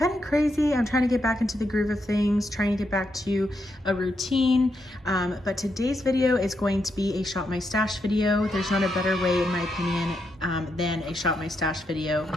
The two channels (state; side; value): normal; both; correlation 0.81